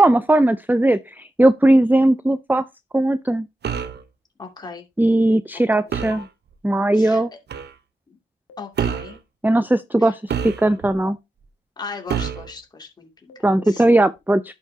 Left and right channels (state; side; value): normal; both; correlation 0.92